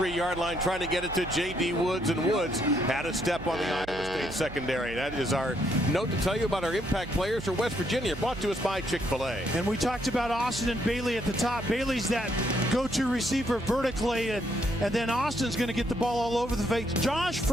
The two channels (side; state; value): right; noise; hum, 14 dB below the sound